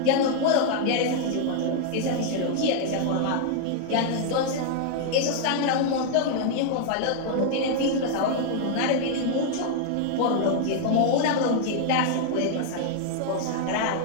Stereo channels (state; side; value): different; both; correlation 0.00